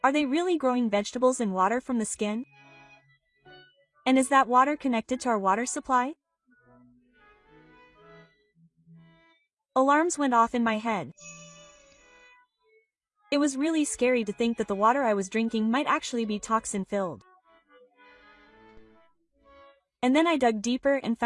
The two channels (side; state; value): both; identical; correlation 1.00